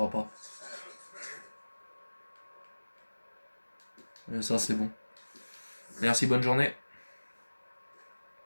pas. Et ça, c'est bon. Merci, bonne journée.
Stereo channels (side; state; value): both; inverted; correlation -1.00